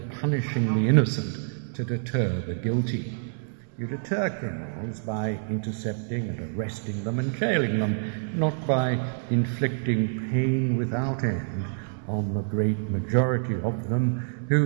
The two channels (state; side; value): silent; left; 60 dB below the other